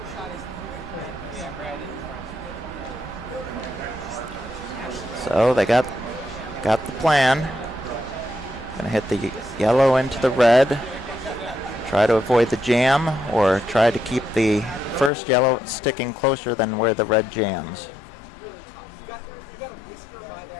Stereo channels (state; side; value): drops out; right; at 15.1 s